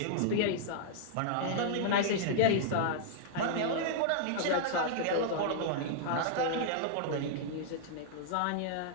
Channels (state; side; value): different; both; correlation -0.01